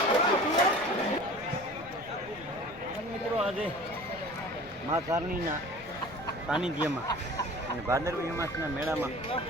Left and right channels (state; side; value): noise; left; rumble, 21 dB below the sound